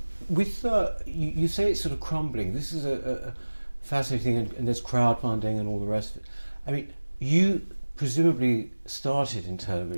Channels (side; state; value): both; inverted; correlation -1.00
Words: With you say it's sort of crumbling. This is a fascinating thing, and there's crowdfunding and all the rest of it. I mean, you presumably started in